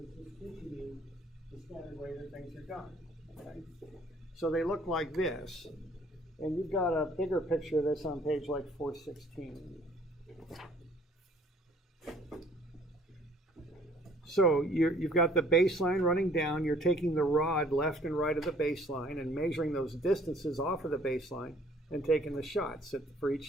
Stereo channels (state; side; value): normal; both; correlation 0.58